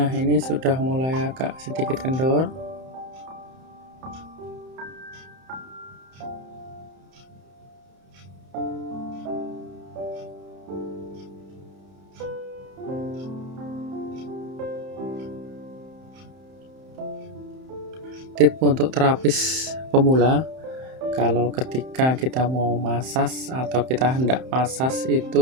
ini sudah mulai agak sedikit kendor. Tip untuk terapis pemula, kalau ketika kita mau masas atau kita hendak masas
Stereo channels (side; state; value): left; late; 31 ms